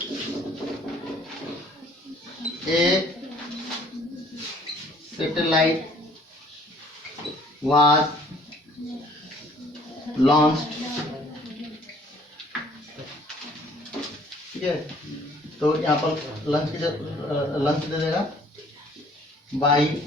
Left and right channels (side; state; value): both; normal; correlation 0.57